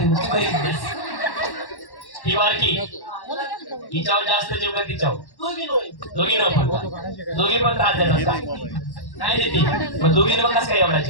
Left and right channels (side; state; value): right; late; 1.1 ms